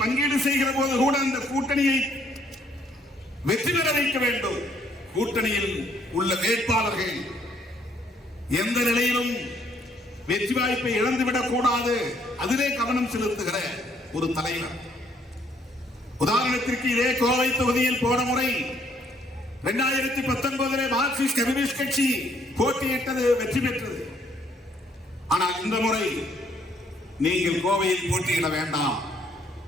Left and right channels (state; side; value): normal; both; correlation 0.67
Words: செய்கிற போது கூட அந்த கூட்டணியை வெற்றி பெற வைக்க வேண்டும். கூட்டணியில் உள்ள வேட்பாளர்கள் எந்த நிலையிலும் வெற்றி வாய்ப்பை இழந்துவிடக் கூடாது, அதிலே கவனம் செலுத்துகிற ஒரு தலைவர். உதாரணத்திற்கு இதே கோவை தொகுதியில் போன முறை 2019 மார்க்சிஸ்ட் கம்யூனிஸ்ட் கட்சி போட்டியிட்டது, வெற்றி பெற்றது. ஆனால் இந்த முறை நீங்கள் கோவையில் போட்டியிட வேண்டாம்,